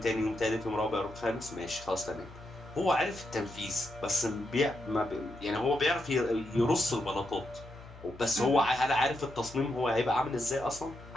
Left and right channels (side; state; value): left; noise; hum, 18 dB below the sound